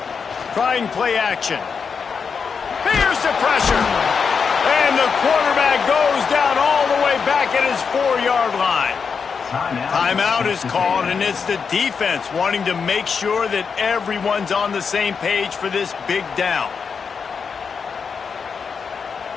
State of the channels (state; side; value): quieter; right; 5.9 dB